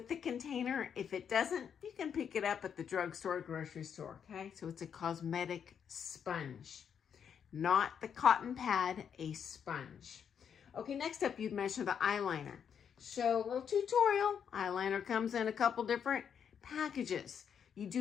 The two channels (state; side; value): quieter; right; 7.7 dB